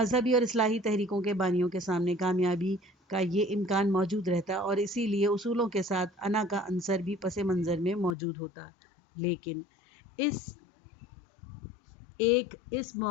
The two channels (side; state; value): right; drops out; at 8.2 s